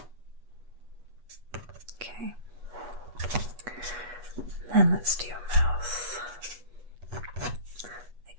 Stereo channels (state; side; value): late; left; 8.3 ms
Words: Okay. Then let's do your mouth.